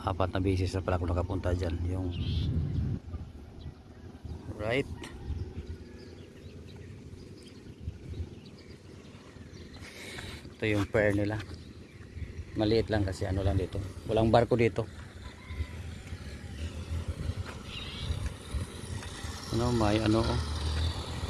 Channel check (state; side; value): identical; both; correlation 1.00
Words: 4 na beses na pala ako nakapunta dyan. Yung right. Ito yung pier nila. Maliit lang kasi ano lang dito. Walang barko dito. Ano, may ano,